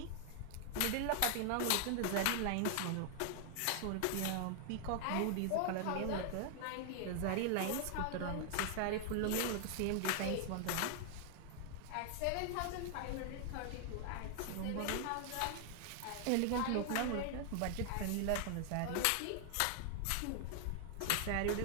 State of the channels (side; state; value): both; different; correlation 0.00